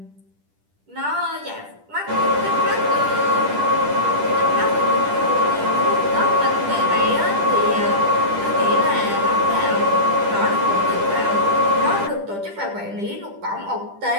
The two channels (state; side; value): late; left; 10 ms